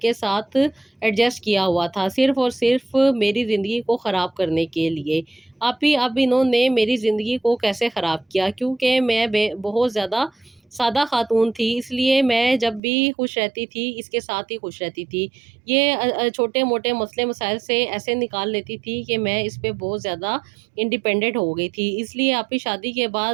साथ एडजस्ट किया हुआ था, सिर्फ़ और सिर्फ़ मेरी ज़िंदगी को ख़राब करने के लिए। अब इन्होंने मेरी ज़िंदगी को कैसे ख़राब किया, क्योंकि मैं बहुत ज़्यादा सादा ख़ातून थी, इसलिए मैं जब भी खुश रहती थी, इसके साथ ही खुश रहती थी। ये छोटे-मोटे मसले-मसाइल से ऐसे निकाल लेती थी कि मैं इस पे बहुत ज़्यादा इंडिपेंडेंट हो गई थी। इसलिए आपकी शादी के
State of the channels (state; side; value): drops out; left; at 12.8 s